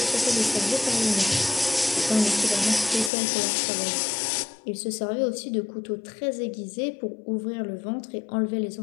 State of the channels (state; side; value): drops out; right; at 3.1 s